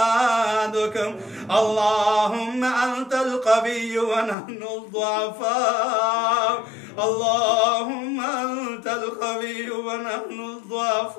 اللهم أنت القوي ونحن الضعفاء اللهم أنت القوي ونحن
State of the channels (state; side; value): drops out; right; at 4.4 s